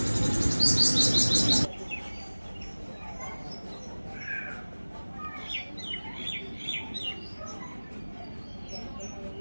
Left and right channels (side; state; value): both; inverted; correlation -1.00